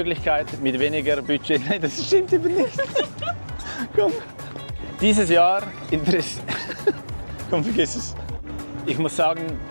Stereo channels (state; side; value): inverted; both; correlation -1.00